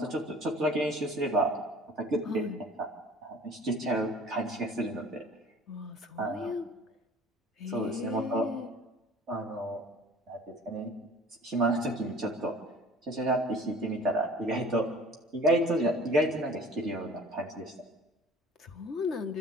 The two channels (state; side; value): normal; both; correlation 0.47